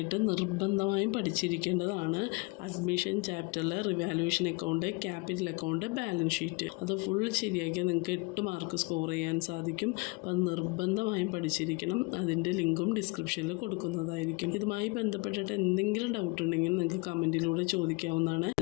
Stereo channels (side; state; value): right; quieter; 27.6 dB